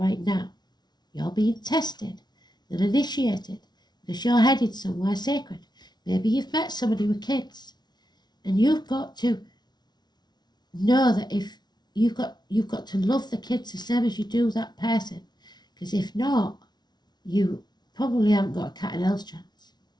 now. You're being tested and initiated because you're headed somewhere sacred. Maybe you've met somebody with kids, and you've got to know that if you've got to love the kids the same as you do that person, because if not, you probably haven't got a cat and else chance.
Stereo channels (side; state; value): right; late; 0.20 ms